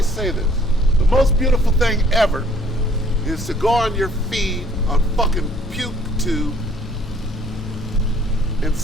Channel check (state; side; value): normal; both; correlation 0.60